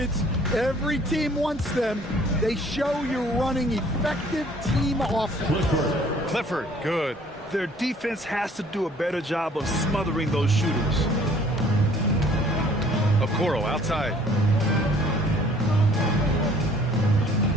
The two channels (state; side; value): normal; both; correlation 0.56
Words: Every team wants them. They show you're running effective team offense. Clifford, good. Their defense has to do a better job of smothering those shooters. Okoro outside.